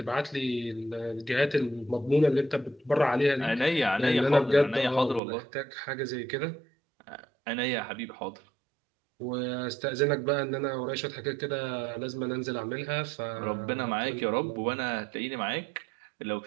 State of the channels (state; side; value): drops out; left; at 5.2 s